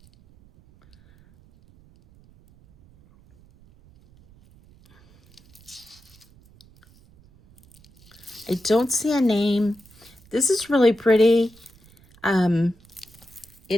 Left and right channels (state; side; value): noise; right; rumble, 28 dB below the sound